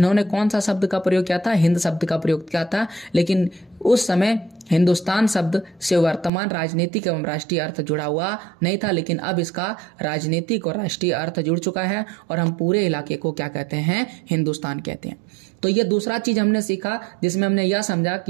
कौन सा शब्द का प्रयोग किया था, हिंद शब्द का प्रयोग किया था। लेकिन उस समय हिंदुस्तान शब्द से वर्तमान राजनीतिक एवं राष्ट्रीय अर्थ जुड़ा हुआ नहीं था, लेकिन अब इसका राजनीतिक और राष्ट्रीय अर्थ जुड़ चुका है और हम पूरे इलाके को क्या कहते हैं, हिंदुस्तान कहते हैं। तो ये दूसरा चीज हमने सीखा, जिसमें हमने यह समझा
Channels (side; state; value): left; drops out; at 6.3 s